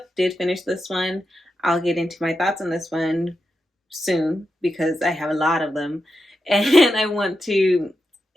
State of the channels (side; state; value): both; normal; correlation 0.88